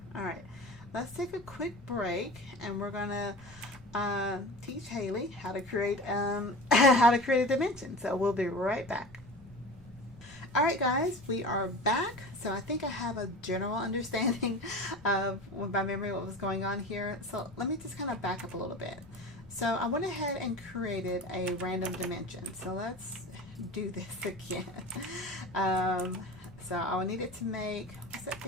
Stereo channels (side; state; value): both; normal; correlation 0.34